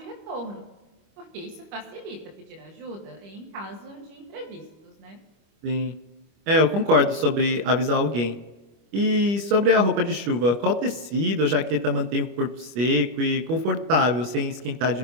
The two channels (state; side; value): late; left; 25 ms